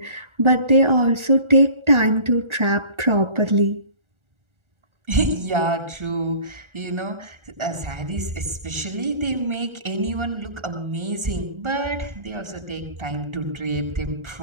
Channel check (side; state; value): left; late; 1.4 ms